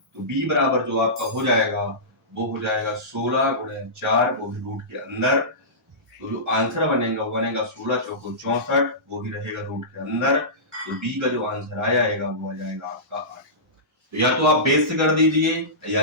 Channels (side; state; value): both; normal; correlation -0.19